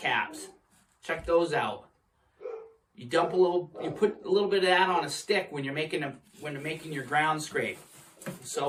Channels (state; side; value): identical; both; correlation 1.00